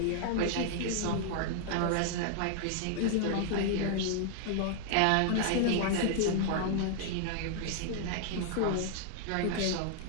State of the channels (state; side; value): different; both; correlation 0.00